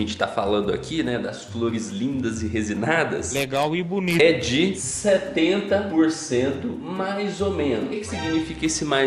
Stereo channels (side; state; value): both; identical; correlation 1.00